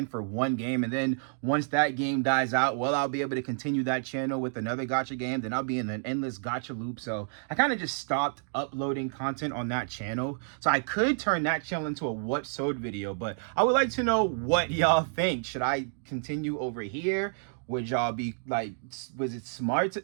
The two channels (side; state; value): left; silent; digital silence